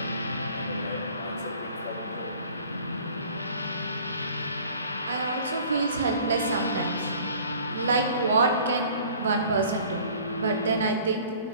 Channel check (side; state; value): both; inverted; correlation -0.50